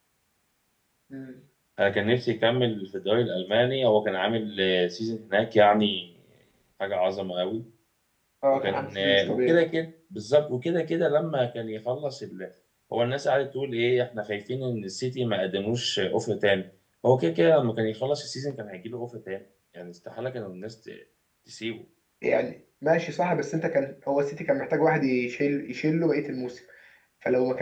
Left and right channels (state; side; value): identical; both; correlation 1.00